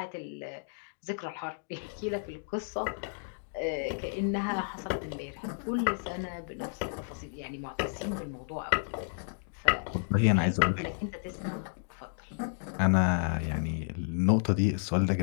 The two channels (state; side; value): silent; right; digital silence